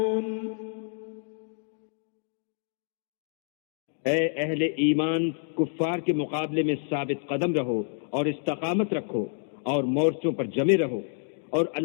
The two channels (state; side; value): silent; right; 59 dB below the other